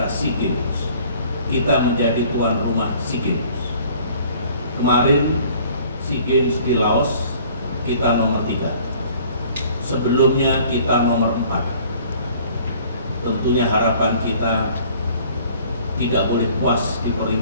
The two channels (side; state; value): both; inverted; correlation -0.53